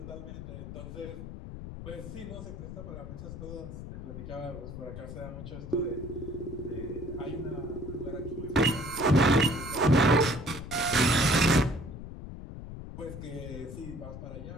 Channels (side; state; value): left; noise; rumble, 10 dB below the sound